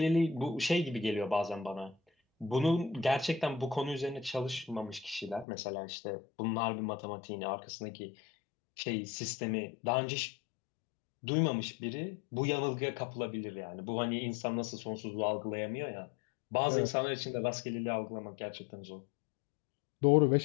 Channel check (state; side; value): drops out; right; at 5.5 s